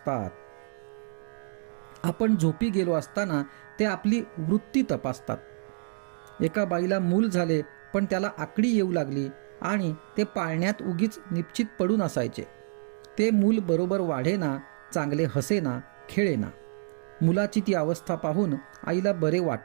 आपण झोपी गेलो असताना ते आपली वृत्ती तपासतात. एका बाईला मूल झाले पण त्याला आकडी येऊ लागली आणि ते पाळण्यात उगीच निश्चित पडून असायचे. ते मूल बरोबर वाढेना, चांगले हसेना, खेळेना. मुलाची ती अवस्था पाहून आईला बरे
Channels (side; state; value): left; silent; digital silence